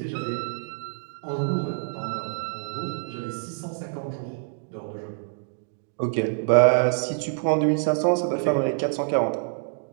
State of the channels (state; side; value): silent; left; digital silence